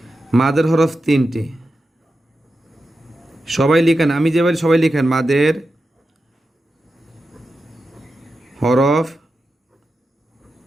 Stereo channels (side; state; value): both; normal; correlation 0.90